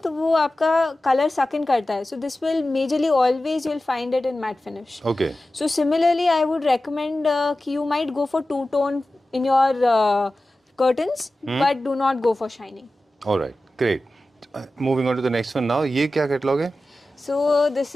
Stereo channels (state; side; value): normal; both; correlation 0.95